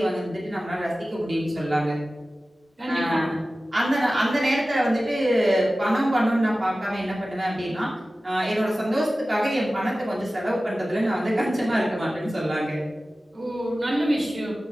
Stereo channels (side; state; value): both; normal; correlation 0.96